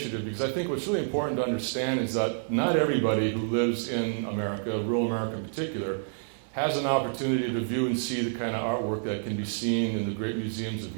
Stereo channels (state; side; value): silent; left; 59 dB below the other